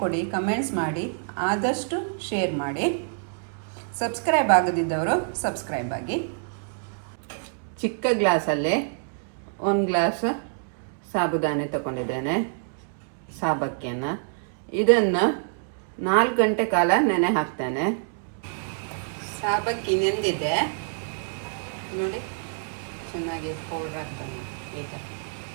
ಕೊಡಿ, ಕಮೆಂಟ್ಸ್ ಮಾಡಿ, ಆದಷ್ಟು ಶೇರ್ ಮಾಡಿ. ಸಬ್ಸ್ಕ್ರೈಬ್ ಆಗದಿದ್ದವರು ಸಬ್ಸ್ಕ್ರೈಬ್ ಆಗಿ. ಚಿಕ್ಕ ಗ್ಲಾಸಲ್ಲೇ 1 ಗ್ಲಾಸ್ ಸಾಬುದಾನೆ ತಗೊಂಡಿದ್ದೇನೆ, ಸಾಬಕ್ಕಿಯನ್ನು. ಇದನ್ನು 4 ಗಂಟೆ ಕಾಲ ನೆನೆ ಹಾಕ್ತೇನೆ. ಸಾಬಕ್ಕಿ ನೆಂದಿದೆ ನೋಡಿ, ಚೆನ್ನಾಗಿ ಪೌಡ್ರ್ ಹಾಕ್ತೇನೆ. ಈಗ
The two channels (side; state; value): left; silent; 61 dB below the other